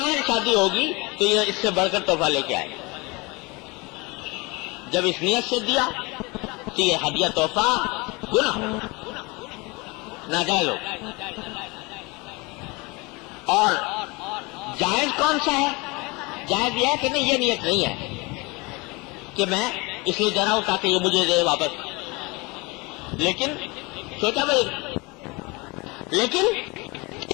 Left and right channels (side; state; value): right; quieter; 26.3 dB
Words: شادی ہوگی تو یہ اس سے بڑھ کر تحفہ لے کے آئے۔ جب اس نیت سے دیا تو یہ ہدیہ تحفہ گناہ ہو، ناجائز ہو۔ اور جائز کون سا ہے؟ جائز یہ ہے کہ نہیں، یہ نیت نہیں ہے کہ میں اس لیے دے رہا ہوں تاکہ یہ مجھے دے واپس، لیکن سوچا بھائی، لیکن